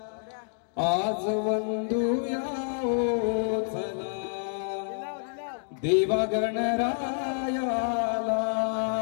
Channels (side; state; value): right; silent; digital silence